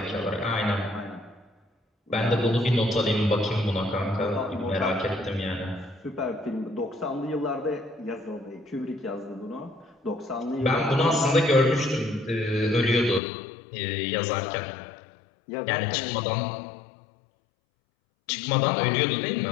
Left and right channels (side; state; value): right; drops out; at 13.2 s